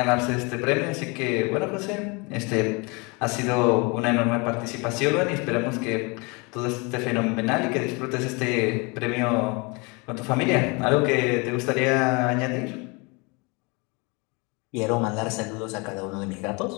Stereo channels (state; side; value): quieter; right; 29.2 dB